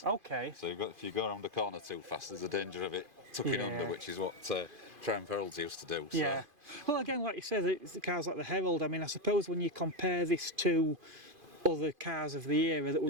Okay. So if you go around a corner too fast, there's a danger of it tucking under, which is what Triumph Heralds used to do. So. Yeah. Well, again, like you said, the cars like the Herald, I mean, I suppose when you compare this to other cars of the era that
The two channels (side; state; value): left; late; 2.5 ms